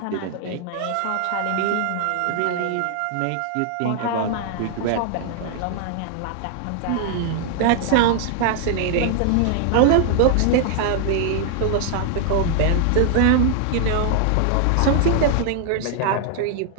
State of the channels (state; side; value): different; both; correlation 0.00